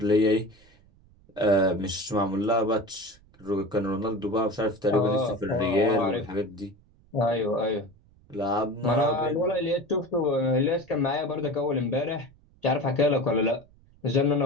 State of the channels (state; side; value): noise; right; rumble, 29 dB below the sound